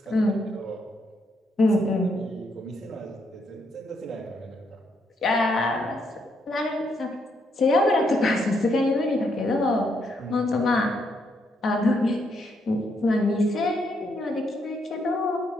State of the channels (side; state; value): both; normal; correlation 0.76